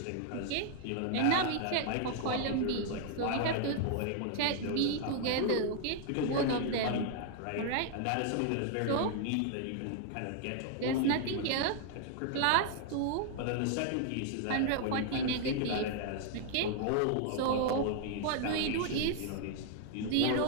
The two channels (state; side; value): different; both; correlation 0.00